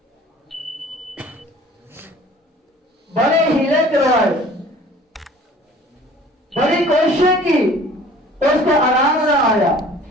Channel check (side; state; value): both; normal; correlation 0.49